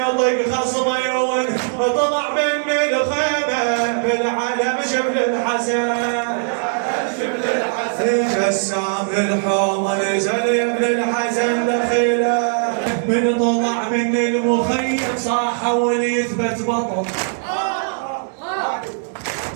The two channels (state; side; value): silent; left; 66 dB below the other